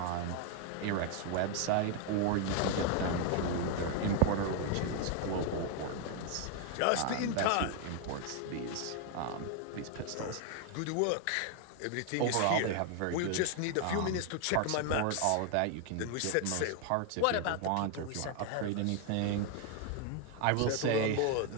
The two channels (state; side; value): different; both; correlation 0.01